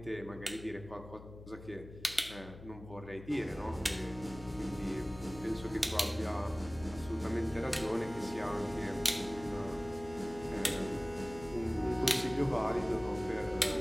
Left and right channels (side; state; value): left; noise; hum, 15 dB below the sound